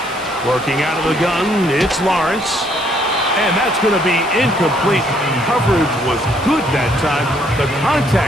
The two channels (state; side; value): noise; left; hiss, 19 dB below the sound